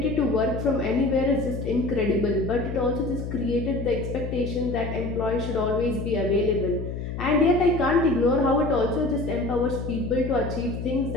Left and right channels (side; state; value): left; noise; hum, 6 dB below the sound